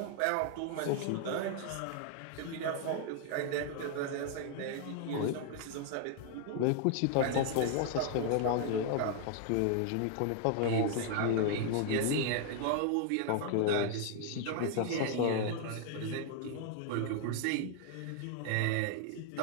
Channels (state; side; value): different; both; correlation 0.00